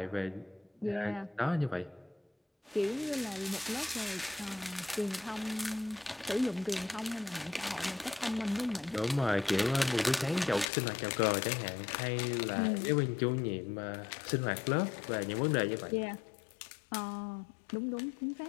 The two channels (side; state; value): right; drops out; at 10.7 s